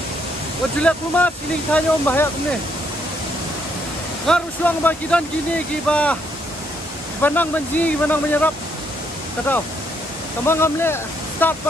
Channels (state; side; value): normal; both; correlation 0.72